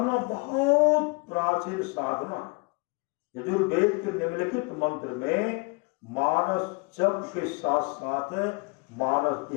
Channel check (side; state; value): right; quieter; 30.3 dB